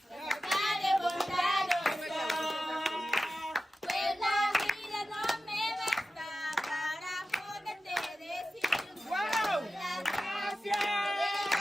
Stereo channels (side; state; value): both; normal; correlation 0.93